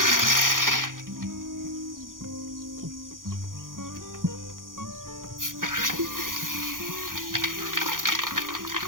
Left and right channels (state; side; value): late; left; 0.90 ms